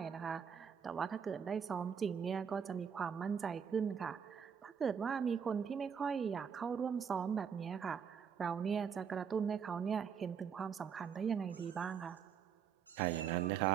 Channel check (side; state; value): left; quieter; 7.2 dB